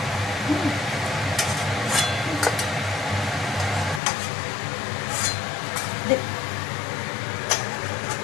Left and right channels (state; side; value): drops out; right; at 4.0 s